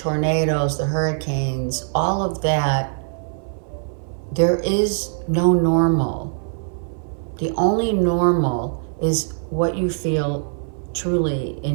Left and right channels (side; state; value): left; silent; 57 dB below the other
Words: the hurricanes, all of that, there is no normal. The only normal is what you feel truly